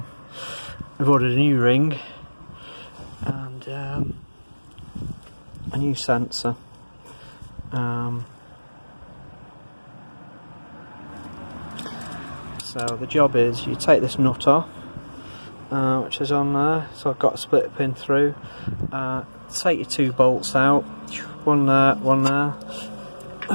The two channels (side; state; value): both; inverted; correlation -1.00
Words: we've ordered a new ring and a new sensor. So the job is you take this nut off, which is on there. So I've got a split pin through. Take your two bolts out. One there, one there.